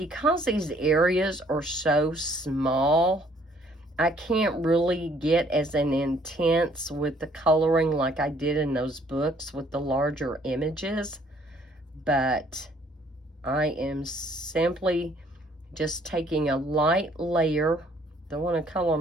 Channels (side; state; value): both; normal; correlation 0.62